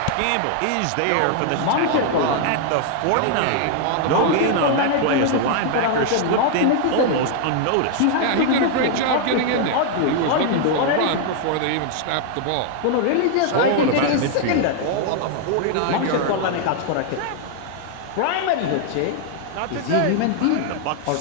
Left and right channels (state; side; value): different; both; correlation 0.00